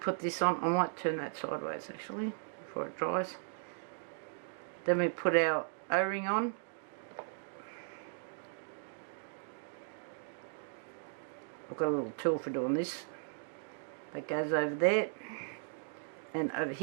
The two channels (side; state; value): left; silent; digital silence